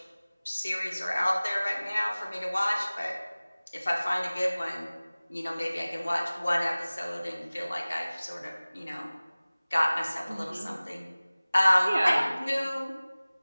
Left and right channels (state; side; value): inverted; both; correlation -0.99